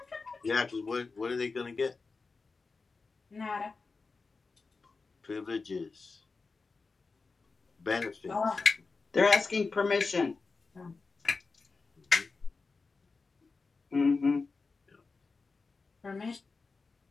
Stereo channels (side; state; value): right; quieter; 4.2 dB